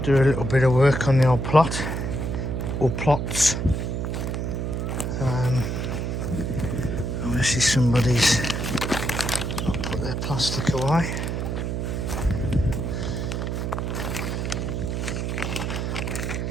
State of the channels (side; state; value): right; noise; hum, 2 dB below the sound